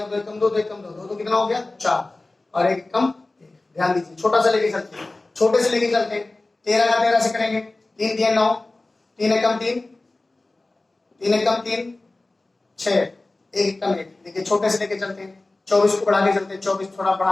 2 एकम 2 2 एकम 2 2 कितना हो गया 4 और 1 एकम 1। ध्यान दीजिए, छोटा सा लेके चलते हैं, छोटे से लेके चलते हैं, 13 का 13 से करेंगे, 3 3 9, 3 एकम 3, 3 एकम 3 6, 1 एकम 1। देखिए छोटे से लेके चलते हैं, 24 को बढ़ा के चलते हैं, 24 थोड़ा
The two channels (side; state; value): right; quieter; 3.0 dB